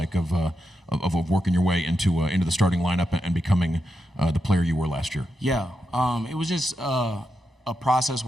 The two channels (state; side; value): normal; both; correlation 0.86